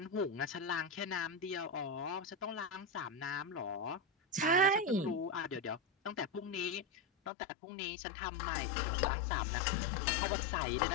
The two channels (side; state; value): right; drops out; at 7.3 s